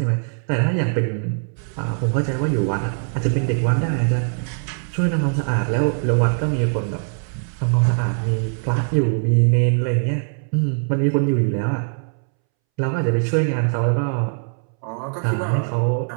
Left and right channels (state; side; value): silent; left; 64 dB below the other